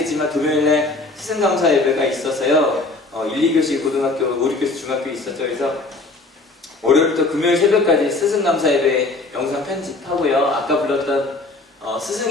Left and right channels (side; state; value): right; quieter; 3.3 dB